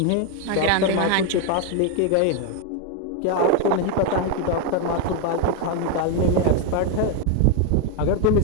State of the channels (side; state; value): both; different; correlation 0.01